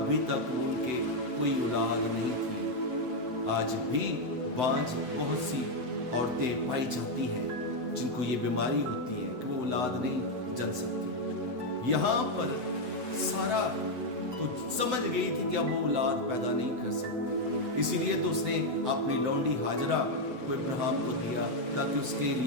तक उनके कोई औलाद नहीं थी। आज भी बांझ बहुत सी औरतें पाई जाती हैं जिनको ये बीमारी होती है कि वो औलाद नहीं जन सकती। यहाँ पर सारा तो समझ गई थी कि अब वो औलाद पैदा नहीं कर सकती, इसीलिए तो उसने अपनी लौंडी हाजरा को इब्राहिम को दिया ताकि उसके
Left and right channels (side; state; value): left; late; 7.9 ms